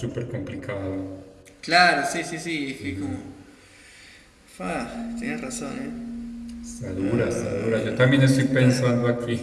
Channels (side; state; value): both; identical; correlation 1.00